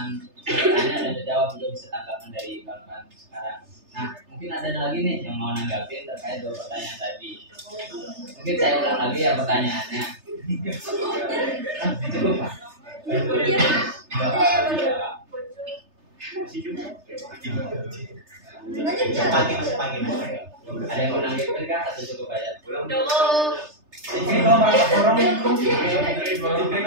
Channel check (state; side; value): late; left; 3.3 ms